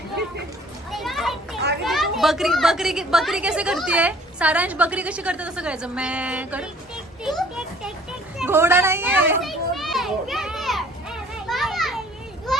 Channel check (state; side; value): normal; both; correlation 0.54